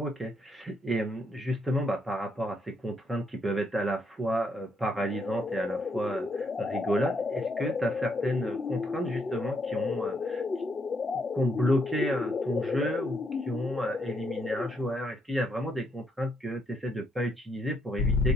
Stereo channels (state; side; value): normal; both; correlation 0.75